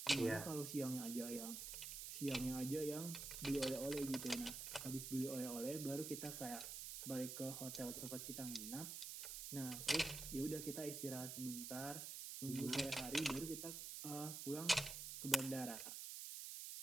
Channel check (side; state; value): right; noise; hiss, 6 dB below the sound